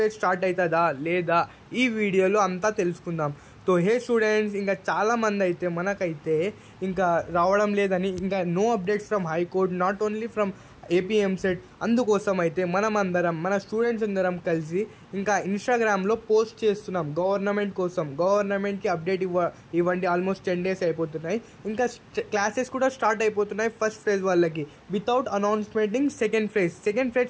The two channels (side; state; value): both; identical; correlation 1.00